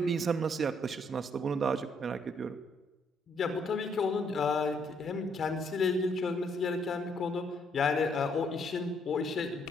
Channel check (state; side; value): normal; both; correlation 0.70